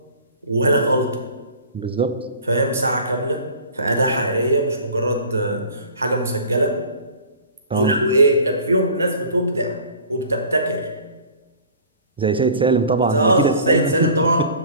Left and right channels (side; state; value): both; inverted; correlation -0.45